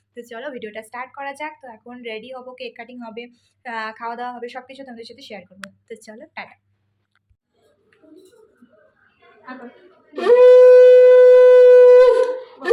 তো চলো ভিডিওটা স্টার্ট করা যাক। তো এখন রেডি হবো, কেক কাটিং হবে, খাওয়া দাওয়া হবে, সব কিছু তোমাদের সাথে শেয়ার করবো। তো চলো টাটা।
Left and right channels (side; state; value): both; identical; correlation 1.00